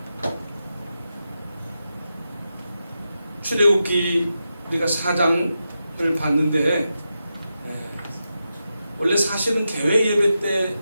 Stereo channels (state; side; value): inverted; both; correlation -0.89